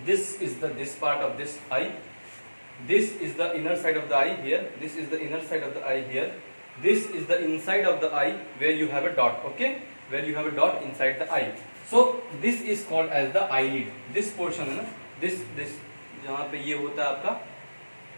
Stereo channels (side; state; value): both; inverted; correlation -1.00